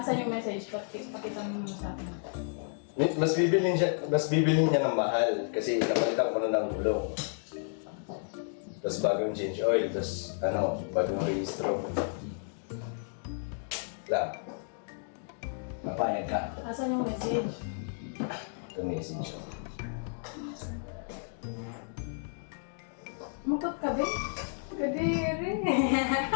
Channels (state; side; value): silent; right; digital silence